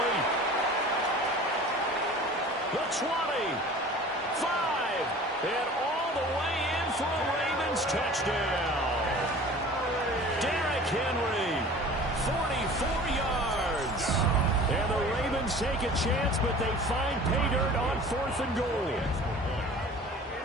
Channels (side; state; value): both; normal; correlation 0.43